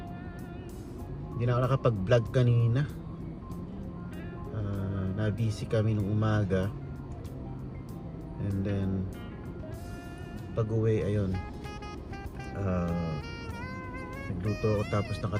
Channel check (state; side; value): identical; both; correlation 1.00